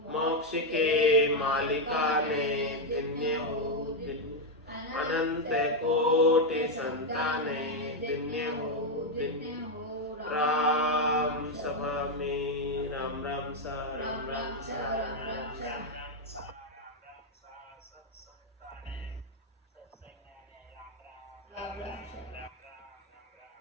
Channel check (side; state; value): both; normal; correlation 0.02